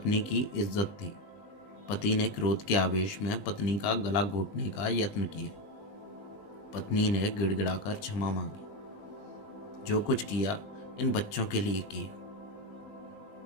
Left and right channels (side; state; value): right; late; 20 ms